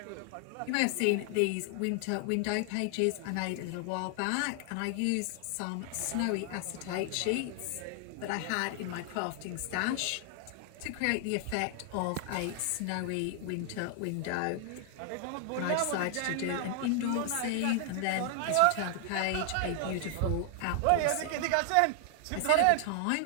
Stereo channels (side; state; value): both; different; correlation 0.00